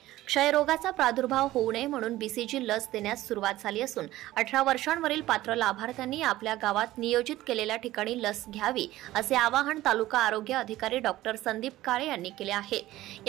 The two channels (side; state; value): left; quieter; 16.0 dB